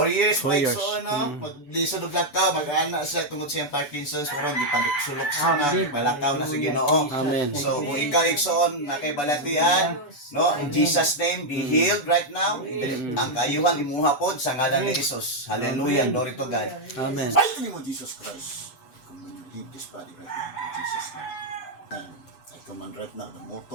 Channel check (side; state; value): right; late; 6.9 ms